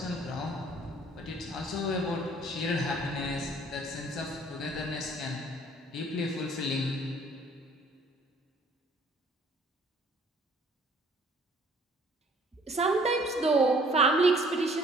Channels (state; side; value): normal; both; correlation 0.57